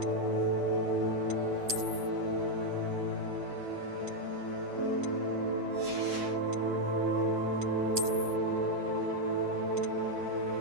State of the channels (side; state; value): left; late; 7.5 ms